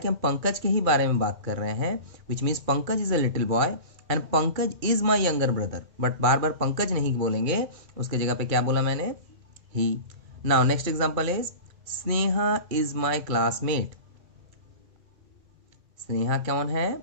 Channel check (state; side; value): late; left; 2.2 ms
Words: हम पंकज के ही बारे में बात कर रहे हैं. Which means Pankaj is a little boy and Pankaj is my younger brother. But बार बार पंकज नहीं बोलेंगे, उसके जगह पे क्या बोला मैंने, he. Now next example is Sneha is my classmate. Sneha कौन है,